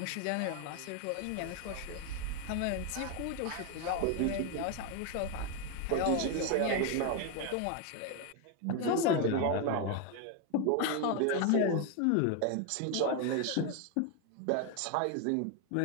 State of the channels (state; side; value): different; both; correlation 0.01